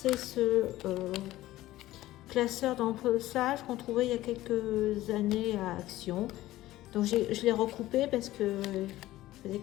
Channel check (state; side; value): quieter; right; 15.9 dB